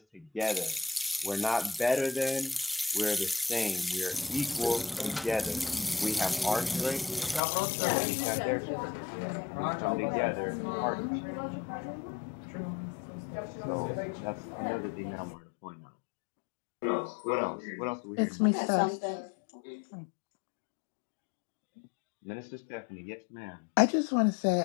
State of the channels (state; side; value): drops out; right; at 7.4 s